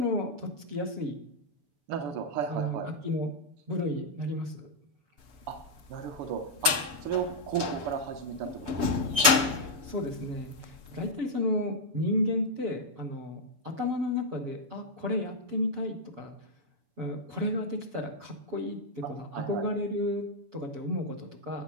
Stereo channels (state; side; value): late; left; 7.0 ms